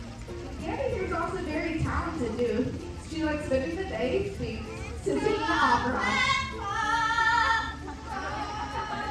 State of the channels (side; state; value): both; identical; correlation 1.00